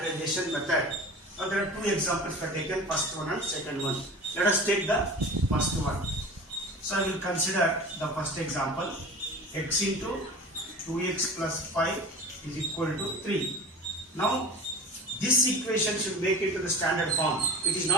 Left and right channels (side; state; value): both; normal; correlation 0.36